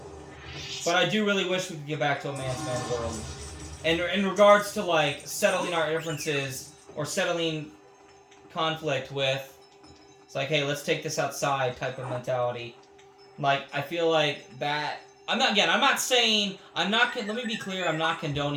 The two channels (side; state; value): both; identical; correlation 1.00